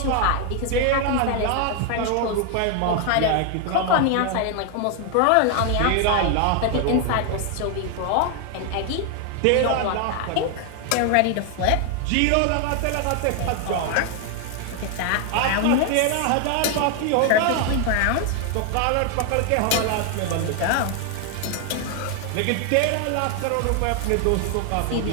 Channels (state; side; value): different; both; correlation 0.01